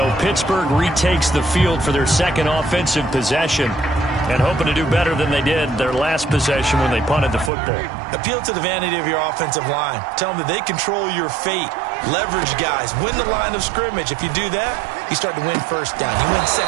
Pittsburgh retakes the field for their second offensive possession, and hoping to do better than they did their last possession when they punted the football. Appeal to the vanity of your offensive line. Tell them that they control your fate. Leverage guys. Win the line of scrimmage. If you do that, you start to win first down. You win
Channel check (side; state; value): left; drops out; at 7.5 s